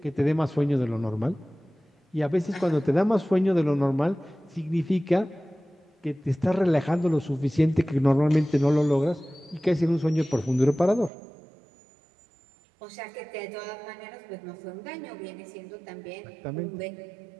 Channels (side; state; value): left; drops out; at 11.1 s